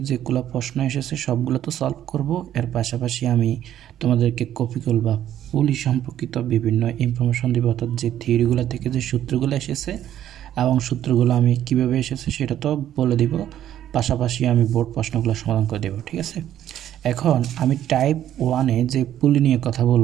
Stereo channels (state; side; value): quieter; left; 11.4 dB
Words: যেগুলো প্রশ্ন এসেছে সবগুলো তো সলভ করব। এর পাশাপাশি আমি তোমাদেরকে কপিকল বা পুলি সম্পর্কিত বিভিন্ন ইনফরমেশন দিব, অর্থাৎ যে থিওরিগুলো থেকে যে সূত্রগুলো এসেছে এবং সূত্রগুলো আমি কিভাবে এসেছে সেটা তো বলে দিব। পাশাপাশি আমি বোর্ড প্রশ্নগুলো সমাধান করে দেব, ঠিক আছে। এখন আমি টাইপ 1-এ যে পুলি নিয়ে কথা